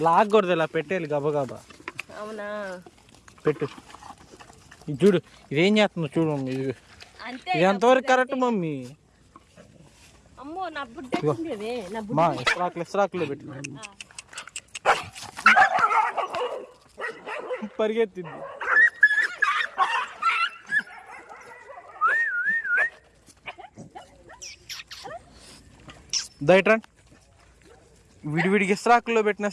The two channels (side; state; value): both; identical; correlation 1.00